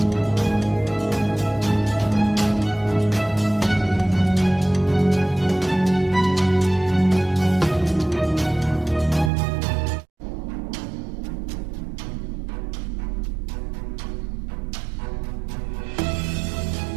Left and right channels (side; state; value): left; drops out; at 9.3 s